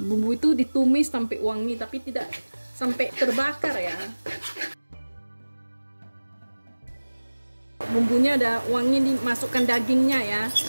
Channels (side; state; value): both; inverted; correlation -1.00